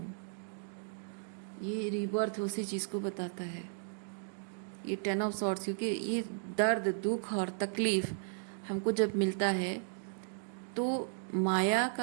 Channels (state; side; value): silent; left; digital silence